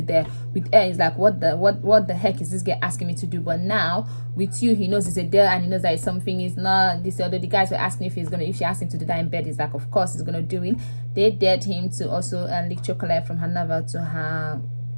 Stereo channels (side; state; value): both; inverted; correlation -1.00